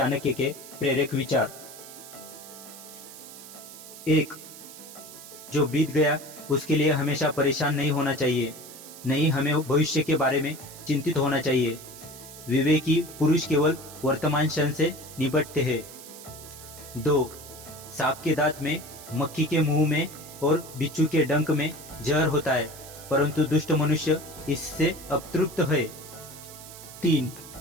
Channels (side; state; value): right; noise; hiss, 16 dB below the sound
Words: के प्रेरक विचार। एक, जो बीत गया उसके लिए हमेशा परेशान नहीं होना चाहिए, नहीं हमें भविष्य के बारे में चिंतित होना चाहिए। विवेकी पुरुष केवल वर्तमान क्षण से निपटते हैं। दो, सांप के दांत में, मक्खी के मुंह में और बिच्छू के डंक में जहर होता है, परंतु दुष्ट मनुष्य इससे अतृप्त है। तीन,